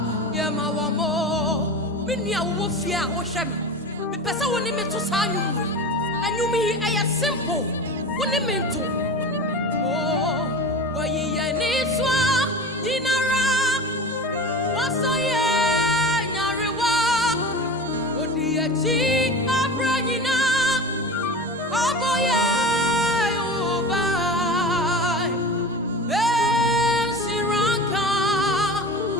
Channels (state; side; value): normal; both; correlation 0.32